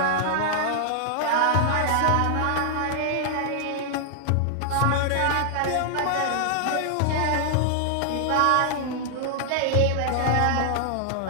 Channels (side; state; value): both; different; correlation -0.01